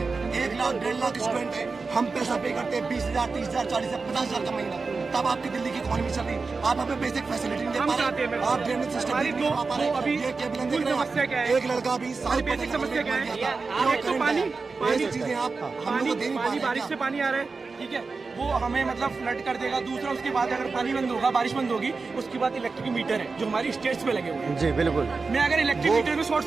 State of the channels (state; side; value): quieter; left; 4.3 dB